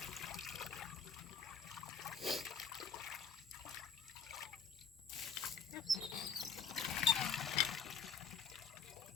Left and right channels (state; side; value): quieter; right; 5.7 dB